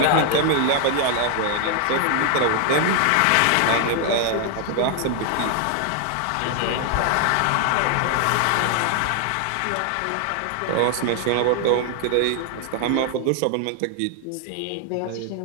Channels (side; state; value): both; different; correlation 0.00